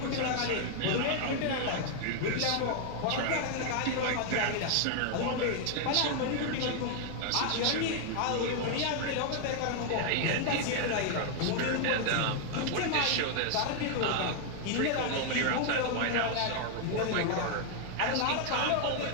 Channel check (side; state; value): both; different; correlation 0.00